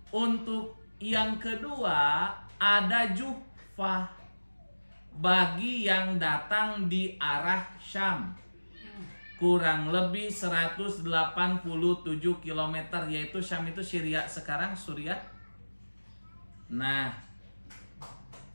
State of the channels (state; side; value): inverted; both; correlation -1.00